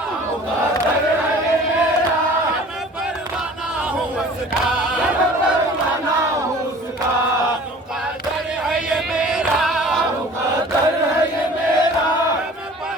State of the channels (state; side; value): normal; both; correlation 0.46